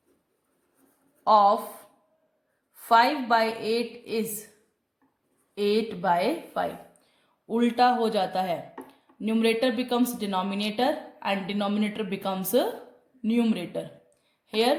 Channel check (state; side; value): identical; both; correlation 1.00